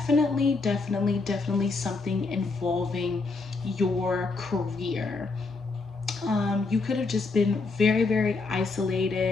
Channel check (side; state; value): right; quieter; 3.9 dB